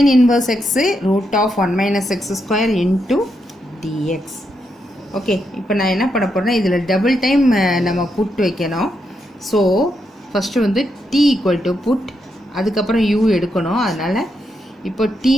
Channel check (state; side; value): normal; both; correlation 0.82